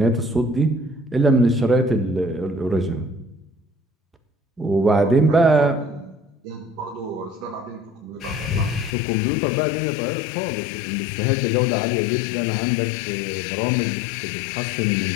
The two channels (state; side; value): drops out; right; at 9.0 s